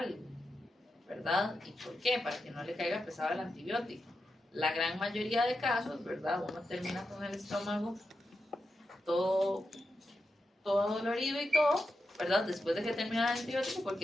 ¿verdad? ¿Y por qué? Para que no le caiga pesado el antibiótico. La gran mayoría de casos, ¿verdad? Uno termina con el estómago todo dolorido y todo, ¿verdad? Después de que termina el antibiótico,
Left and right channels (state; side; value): normal; both; correlation 0.88